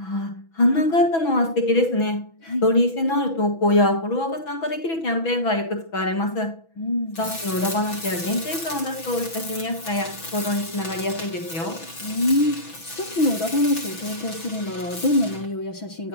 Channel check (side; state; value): right; late; 6.1 ms